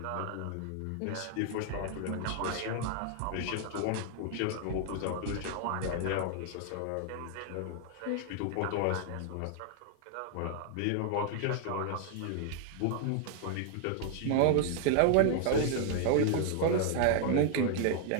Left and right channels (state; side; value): different; both; correlation 0.00